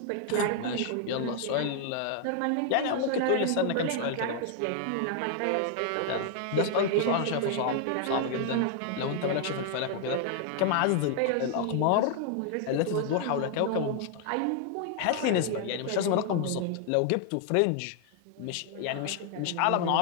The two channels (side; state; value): both; different; correlation 0.00